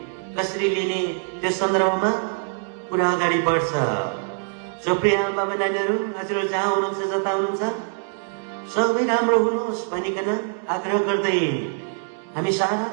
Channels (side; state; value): left; silent; 63 dB below the other